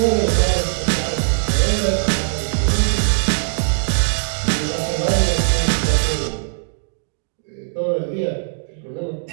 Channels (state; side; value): silent; left; digital silence